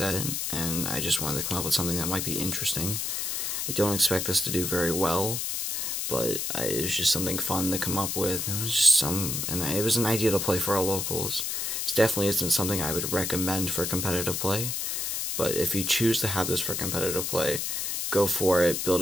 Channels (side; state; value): left; noise; hiss, 1 dB below the sound